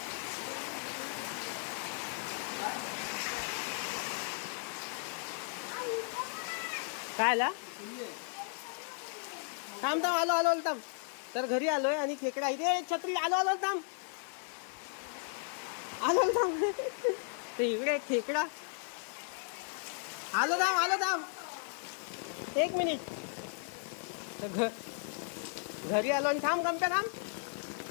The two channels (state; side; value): silent; right; 54 dB below the other